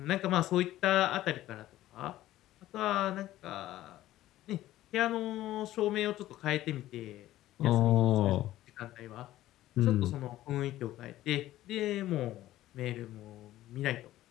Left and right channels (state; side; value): quieter; right; 14.7 dB